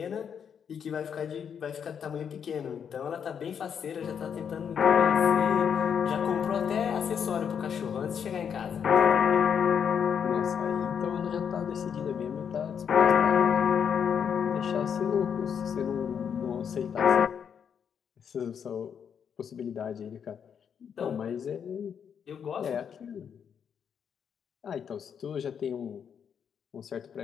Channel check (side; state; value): right; quieter; 7.6 dB